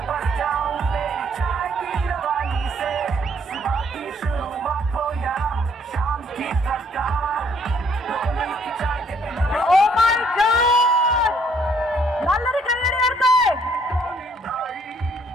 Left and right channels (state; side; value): normal; both; correlation 0.65